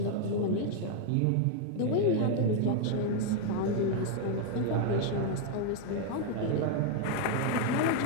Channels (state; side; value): different; both; correlation 0.00